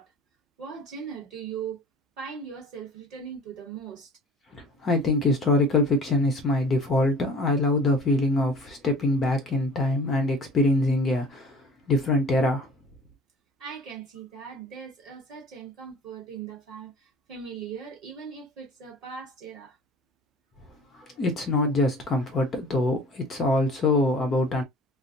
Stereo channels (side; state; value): both; normal; correlation 0.45